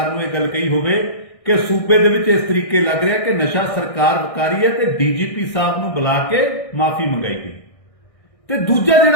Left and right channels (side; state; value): right; late; 1.6 ms